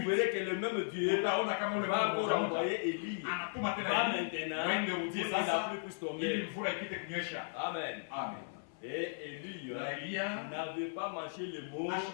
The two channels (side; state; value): right; silent; 54 dB below the other